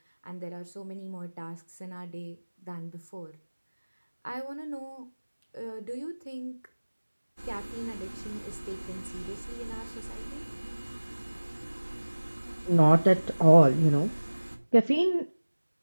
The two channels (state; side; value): inverted; both; correlation -1.00